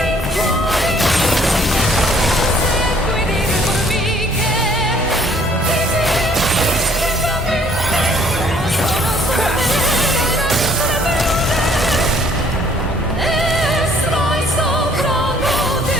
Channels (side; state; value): both; normal; correlation 0.60